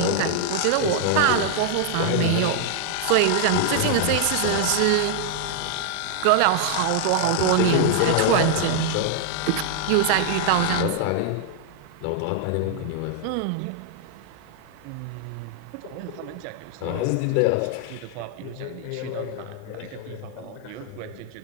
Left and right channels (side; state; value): both; different; correlation 0.00